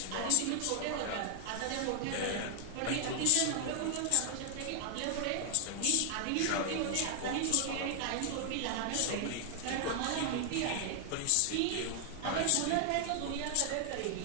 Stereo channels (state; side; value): different; both; correlation 0.00